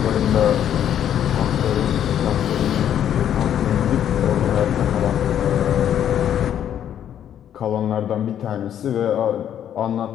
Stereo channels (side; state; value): right; quieter; 10.0 dB